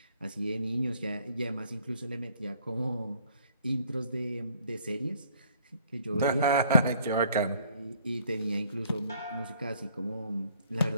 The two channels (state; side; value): inverted; both; correlation -0.60